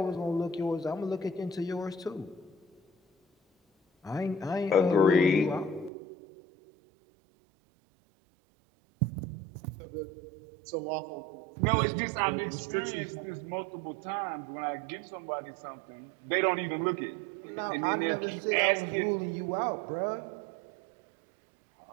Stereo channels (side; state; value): left; drops out; at 5.9 s